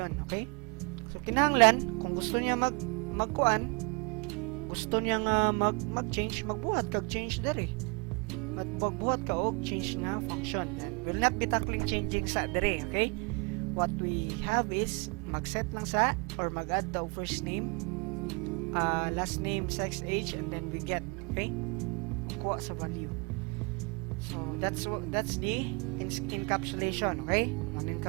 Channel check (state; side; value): quieter; left; 31.9 dB